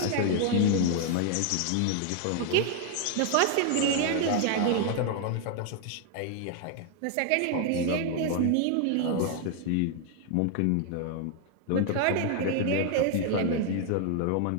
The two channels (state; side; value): different; both; correlation 0.00